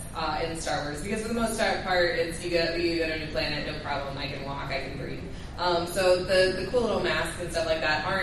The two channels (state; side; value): identical; both; correlation 1.00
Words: in Star Wars, because for the most part, it's you go to a new planet, no problem, I can walk, I can breathe. So the cool little masks and stuff like that